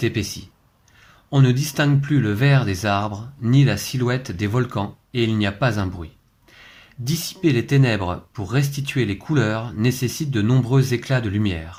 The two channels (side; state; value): both; identical; correlation 1.00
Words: épaissie. On ne distingue plus le vert des arbres, ni la silhouette des volcans, et il n'y a pas un bruit. Dissiper les ténèbres pour restituer les couleurs nécessite de nombreux éclats de